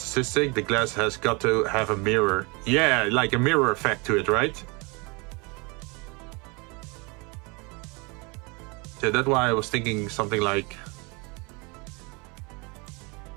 the glass has got to have a mirror. Yeah, like a mirror effect to it, right? So that's why I was thinking something like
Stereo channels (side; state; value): left; quieter; 29.0 dB